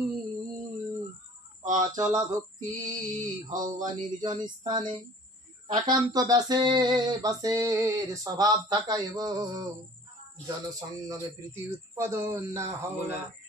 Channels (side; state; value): both; normal; correlation 0.48